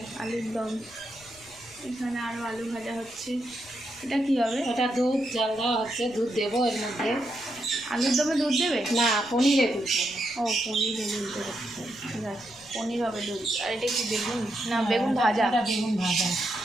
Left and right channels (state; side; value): noise; left; rumble, 26 dB below the sound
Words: আলুর দম। এখানে আরও আলু ভাজা হচ্ছে। এটা কি হবে? ওটা দুধ জাল দেওয়া হচ্ছে, দুধ দেবো এর মধ্যে। আলুর দমে দুধ দেবে? না, পনিরে দুধ দেবো। ও, পনিরে দুধ দেবে, ঠিক আছে। পনির হবে দুধ। আর এটা কি বেগুন? না, বেগুন ভাজা। এটা বেগুন ভাজা।